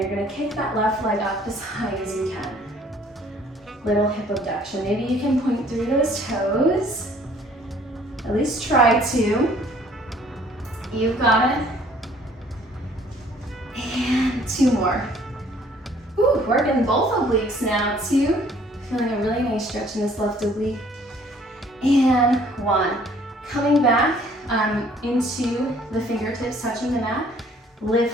gonna kick that left leg up as high as you can. Little hip abduction. Maybe you can point through those toes. At least try to. You've got it. And 2 more. Ooh, working both obliques now, 2. Feeling a really nice stretch in this left oblique. And 1. Coming back into the fingertips, touching the mat.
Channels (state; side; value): normal; both; correlation 0.58